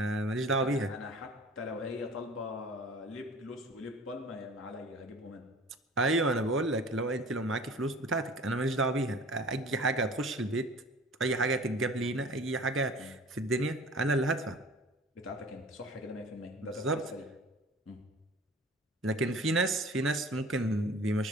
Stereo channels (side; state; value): both; normal; correlation 0.44